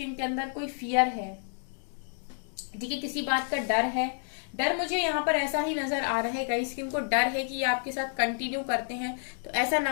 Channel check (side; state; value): right; silent; 58 dB below the other